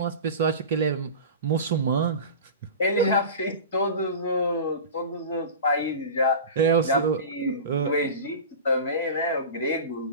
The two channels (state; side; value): inverted; both; correlation -0.31